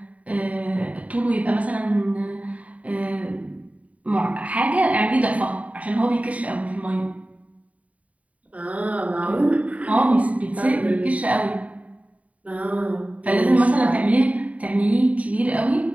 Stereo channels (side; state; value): left; late; 0.068 ms